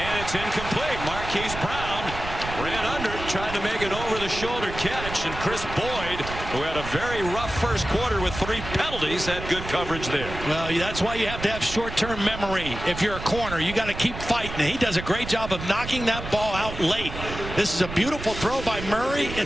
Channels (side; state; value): right; noise; rumble, 9 dB below the sound